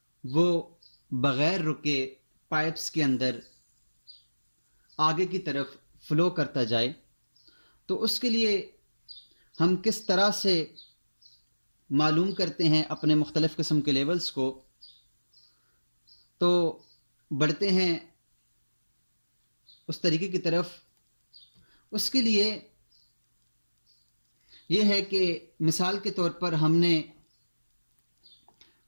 वो बग़ैर रुके पाइप्स के अंदर आगे की तरफ फ्लो करता जाए। तो उसके लिए हम किस तरह से मालूम करते हैं अपने मुख्तलिफ़ किस्म के लेवल्स को, तो बढ़ते हैं उस तरीके की तरफ। उसके लिए यह है कि मिसाल के तौर पर हमने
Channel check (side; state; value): both; inverted; correlation -1.00